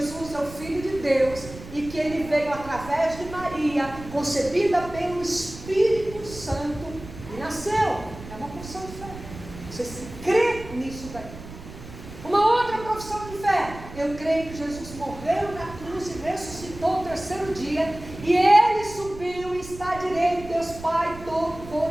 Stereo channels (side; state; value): right; noise; rumble, 14 dB below the sound